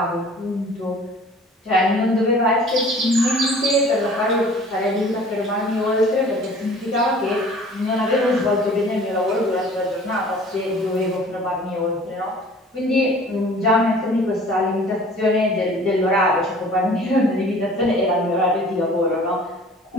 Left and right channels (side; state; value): both; normal; correlation 0.48